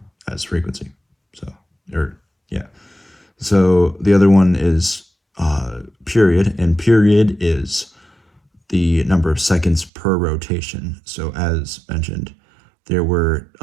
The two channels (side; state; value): left; drops out; at 9.9 s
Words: as frequency. So, yeah. So the other one is period, and period is the number of seconds per rotation. So as mentioned, there were